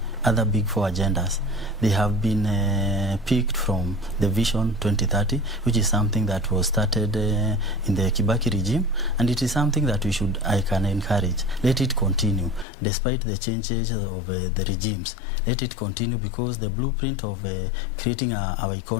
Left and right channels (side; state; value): right; drops out; at 12.7 s